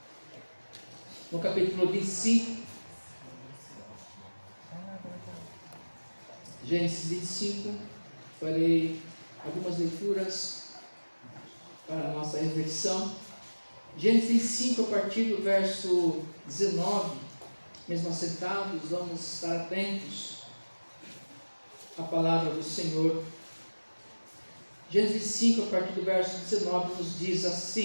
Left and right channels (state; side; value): inverted; both; correlation -1.00